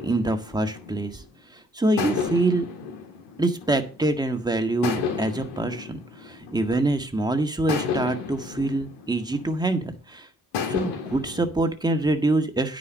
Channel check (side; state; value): both; normal; correlation 0.66